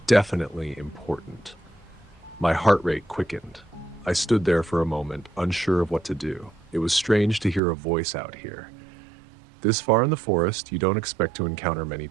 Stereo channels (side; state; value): left; drops out; at 7.6 s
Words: definitely important. My heart rate quickened. I stood there for a moment, unsure of what to do. It was strange to hear a voice out here. This far in the forest, you don't expect to encounter many